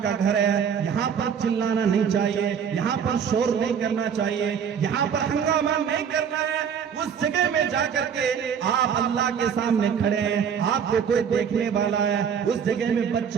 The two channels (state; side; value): quieter; left; 7.6 dB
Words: کا گھر ہے, یہاں پر چلانا نہیں چاہیے, یہاں پر شور نہیں کرنا چاہیے, یہاں پر ہنگامہ نہیں کرنا ہے. اس جگہ میں جا کر کے آپ اللہ کے سامنے کھڑے ہیں, آپ کو کوئی دیکھنے والا ہے, اس جگہ میں